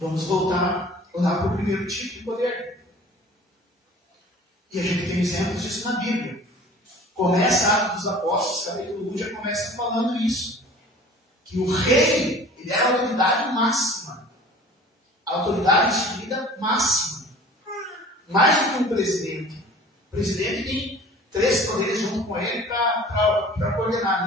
voltar lá para o primeiro tipo de poder. E a gente tem exemplos disso na Bíblia. Começa Atos dos Apóstolos, capítulo 1, já começa falando isso. Que o rei, ele era a autoridade máxima. A autoridade instituída máxima. Mais do que um presidente. O presidente tem 3 poderes junto com ele para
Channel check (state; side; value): normal; both; correlation 0.45